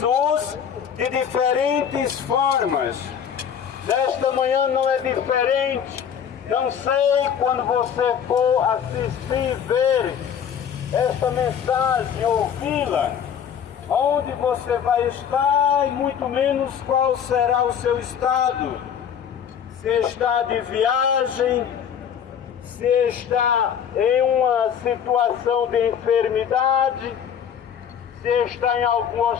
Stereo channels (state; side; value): quieter; right; 8.2 dB